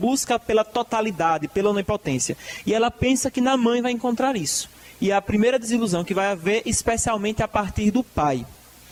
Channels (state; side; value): identical; both; correlation 1.00